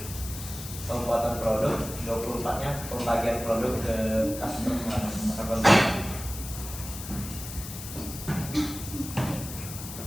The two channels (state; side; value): noise; left; hiss, 10 dB below the sound